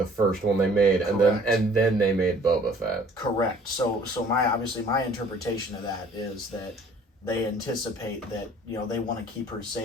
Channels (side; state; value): both; normal; correlation 0.54